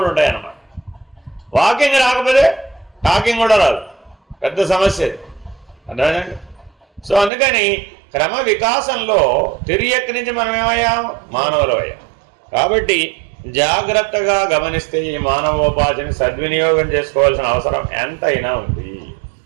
ఉంటాయి అన్నమాట. వాకింగ్ రాకపోతే టాకింగ్ కూడా రాదు, పెద్ద సమస్య. అర్థమైందండి? సో అందుకని క్రమ వికాసంలో తిరియక్ నుంచి మనం ఏమయ్యాం? మానవులు అయ్యాం. కాబట్టి జాగ్రత్తగా గమనిస్తే ఈ మానవోపాధిని సద్వినియోగం చేసుకోవాల్సిన అవసరం ఎంతైనా ఉంది.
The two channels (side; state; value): left; drops out; at 7.3 s